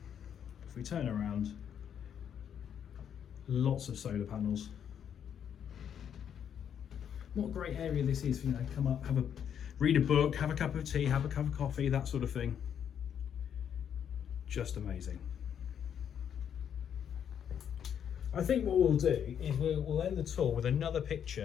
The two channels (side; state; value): right; quieter; 8.6 dB